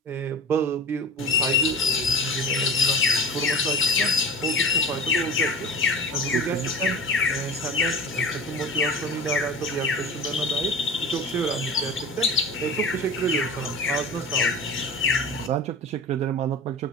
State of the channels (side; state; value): both; normal; correlation 0.34